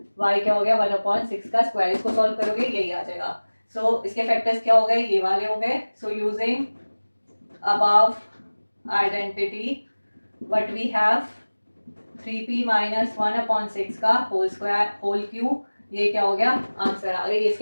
y क्या हो गया 1/6 का स्क्वायर। इसको सॉल्व करोगे यही आ जाएगा। सो इसके फैक्टर्स क्या हो गए ये वाले हो गए। So using above identity what we have 3p minus 1/6 का होल स्क्वायर होल क्यूब, ये क्या हो गया आंसर आ गए,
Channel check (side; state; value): both; inverted; correlation -1.00